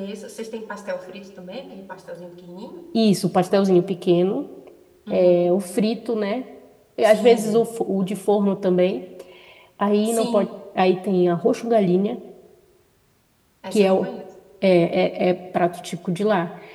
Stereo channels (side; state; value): both; identical; correlation 1.00